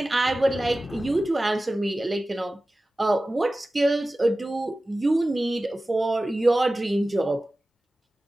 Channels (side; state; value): both; normal; correlation 0.96